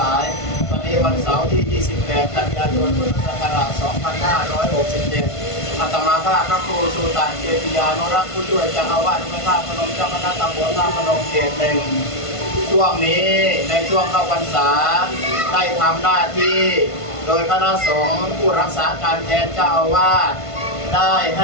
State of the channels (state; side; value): late; right; 1.5 ms